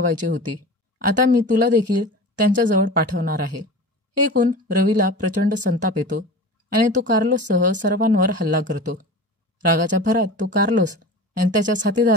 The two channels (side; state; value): both; normal; correlation 0.34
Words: होती. आता मी तुला देखील त्यांच्याजवळ पाठवणार आहे. हे ऐकून रवीला प्रचंड संताप येतो आणि तो कार्लोससह सर्वांवर हल्ला करतो. रागाच्या भरात तो कार्लोस आणि त्याच्या